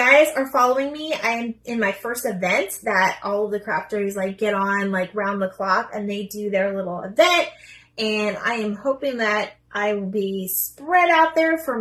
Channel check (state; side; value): identical; both; correlation 1.00